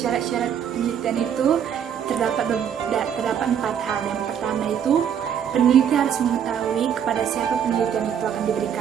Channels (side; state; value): left; quieter; 8.5 dB